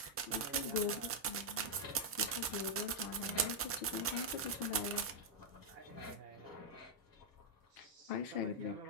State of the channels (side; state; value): both; normal; correlation -0.03